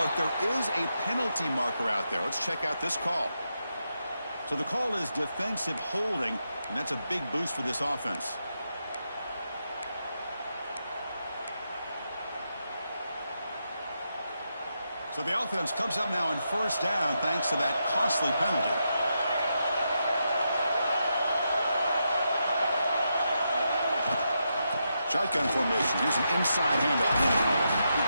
there is a penalty marker out there. Let's check out this call. So the call is defensive holding, and that's a big boost for this offense. So the offense comes up now in 1st down thanks to that costly penalty. Shotgun formation. Here's an inside handoff.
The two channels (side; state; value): both; inverted; correlation -0.84